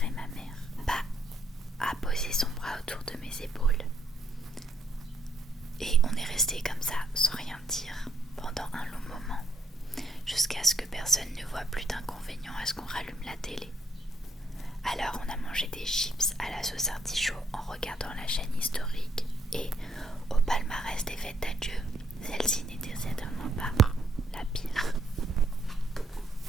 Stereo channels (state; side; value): normal; both; correlation 0.72